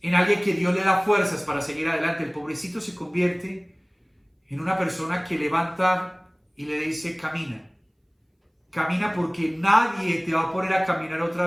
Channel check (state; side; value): identical; both; correlation 1.00